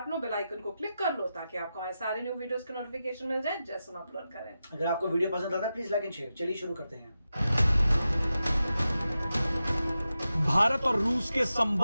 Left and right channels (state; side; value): inverted; both; correlation -0.91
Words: और बेल आइकन को क्लिक कर लो ताकि आपको हमारे सारे न्यू वीडियोस के नोटिफिकेशन मिल जाए जैसे हम अपलोड करें। अगर आपको वीडियो पसंद आता है प्लीज लाइक एंड शेयर। चलिए शुरू करते हैं। भारत और रूस के